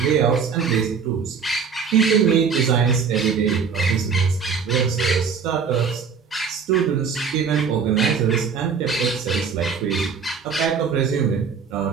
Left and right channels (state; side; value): quieter; left; 6.1 dB